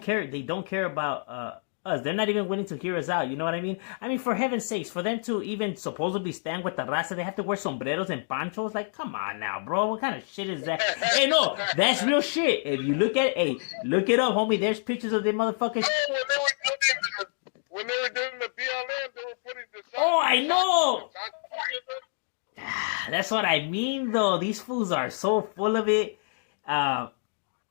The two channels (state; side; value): silent; right; digital silence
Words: care. They don't care about us. They're not even willing to hear us out. You know what I mean? I mean, for heaven's sakes, for them to even supposedly stand with the raza, they have to wear sombreros and panchos. Like, come on now, bro. What kind of shit is that? Hey, no, that's real shit. If you look at it, hey, look it up, homie. There's pictures of them motherfuckers. When they were doing the BLM, they were putting the sign. Oh, I know. That's what I mean, though. These fools are so full of it.